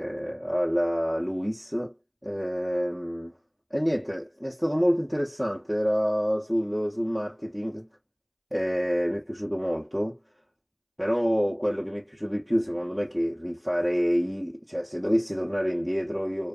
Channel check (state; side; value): identical; both; correlation 1.00